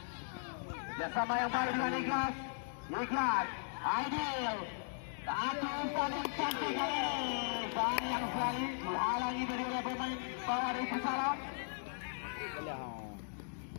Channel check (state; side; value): silent; right; digital silence